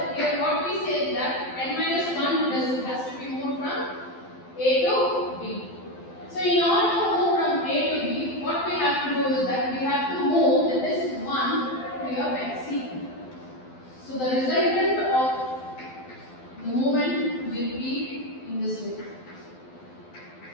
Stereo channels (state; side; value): late; right; 12 ms